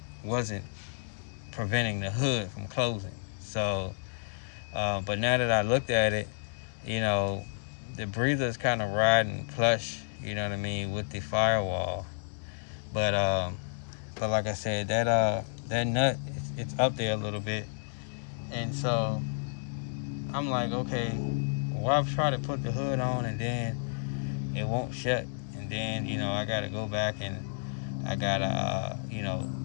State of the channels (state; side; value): silent; right; digital silence